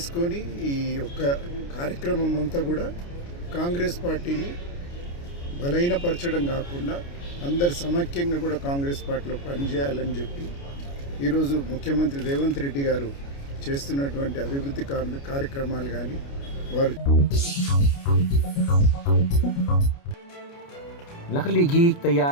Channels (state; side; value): late; right; 29 ms